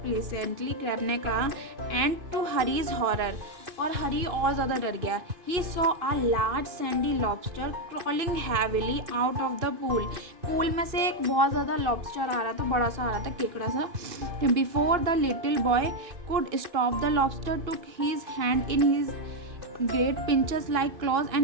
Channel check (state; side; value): late; left; 2.6 ms